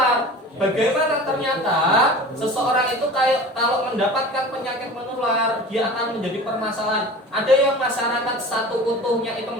Bagaimana ternyata seseorang itu kalau mendapatkan penyakit menular, dia akan menjadi permasalahan. Ada yang masyarakat satu utuhnya itu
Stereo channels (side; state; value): both; normal; correlation 0.38